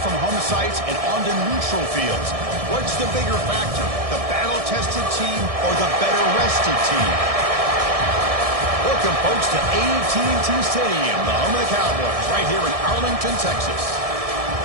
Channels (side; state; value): left; late; 1.6 ms